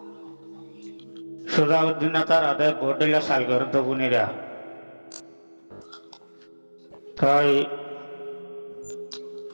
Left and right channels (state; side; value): inverted; both; correlation -1.00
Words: সুজাউদ্দিন তার হাতে ভোট দিলে সাল করে তো বুনিরা তাই